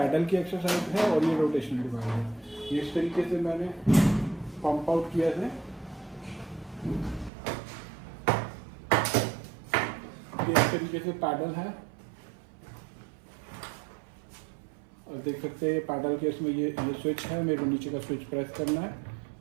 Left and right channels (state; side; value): drops out; left; at 7.3 s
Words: की एक्सरसाइज है, और ये रोटेशनल डिवाइस है। ये इस तरीके से मैंने पंप आउट किया है। ये इस तरीके से पैडल है, और देख सकते हैं पैडल के इसमें ये स्विच है। मेरे को नीचे का स्विच प्रेस करना है